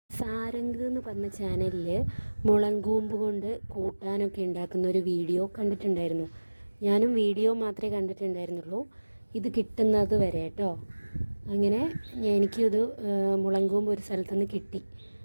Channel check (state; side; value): inverted; both; correlation -1.00